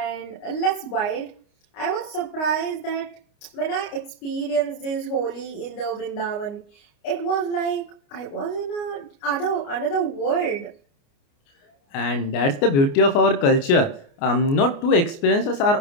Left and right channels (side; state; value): right; late; 29 ms